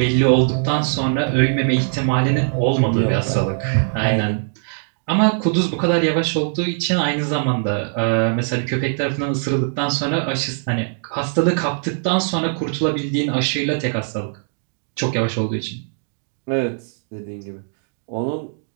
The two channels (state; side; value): silent; left; digital silence